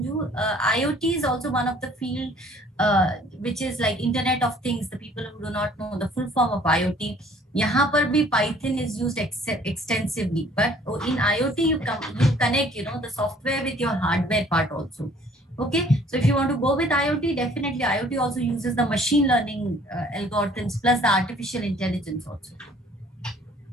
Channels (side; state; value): both; normal; correlation 0.56